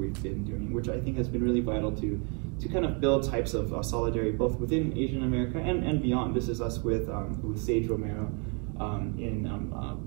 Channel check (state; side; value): quieter; left; 36.1 dB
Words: been doing, which I think has been really vital to kind of build types of solidarity both within Asian America and beyond. This is us with Sage Romero in